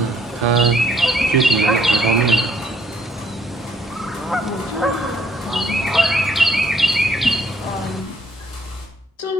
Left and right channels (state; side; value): normal; both; correlation 0.66